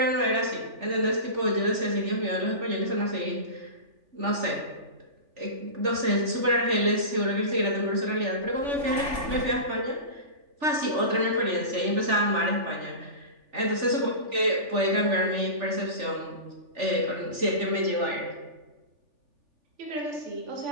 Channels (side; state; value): left; late; 3.4 ms